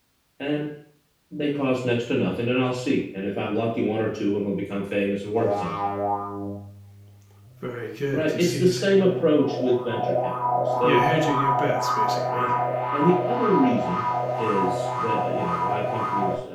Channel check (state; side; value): identical; both; correlation 1.00